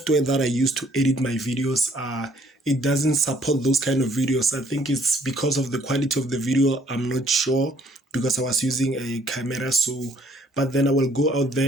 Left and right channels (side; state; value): both; normal; correlation 0.63